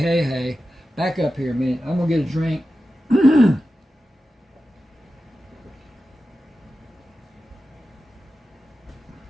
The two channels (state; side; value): normal; both; correlation 0.93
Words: back up here a minute, I'm going to get a drink.